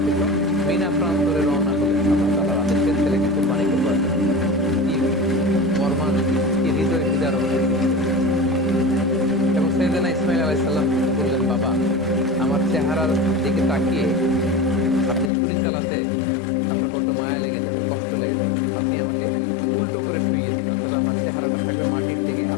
মিনা প্রান্তরে রওনা হলেন আল্লাহ তাআলার আদেশে ছেলেকে কুরবানি করবার জন্য। কি মর্মান, কি হৃদয় বিদারক। এবং সাইয়েদনা ইসমাইল আলাইহিস সালাম বললেন, বাবা, আমার চেহারার দিকে তাকিয়ে আপনি ছুরি চালাতে আপনার বড্ড মায়া লেগে যাবে, কষ্ট লেগে যাবে, আপনি আমাকে উল্টো করে শুইয়ে দিন, অর্থাৎ আমার চেহারাটা থাকবে মাটির দিকে,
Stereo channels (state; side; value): drops out; right; at 15.3 s